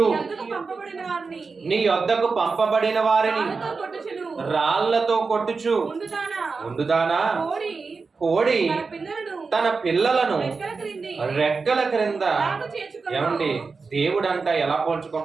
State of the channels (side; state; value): left; quieter; 4.6 dB